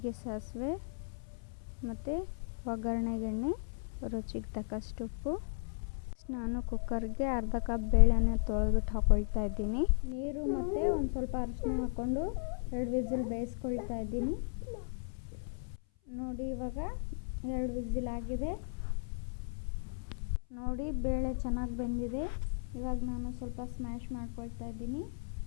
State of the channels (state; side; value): silent; right; 54 dB below the other